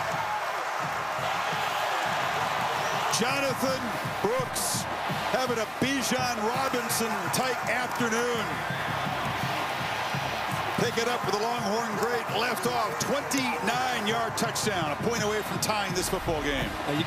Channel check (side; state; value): both; identical; correlation 1.00